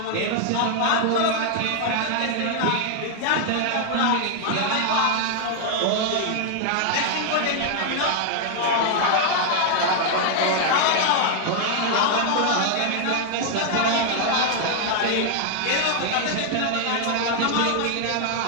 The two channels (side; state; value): both; different; correlation 0.00